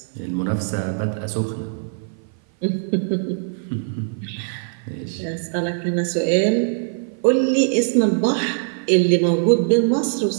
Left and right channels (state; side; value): silent; left; 56 dB below the other